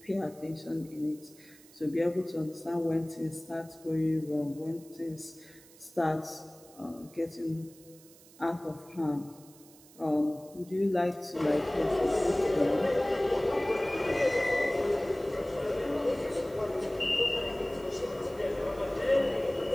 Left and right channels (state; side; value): noise; right; hiss, 23 dB below the sound